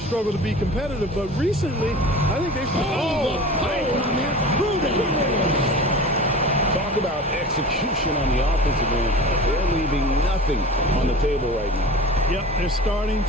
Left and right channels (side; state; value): both; normal; correlation 0.36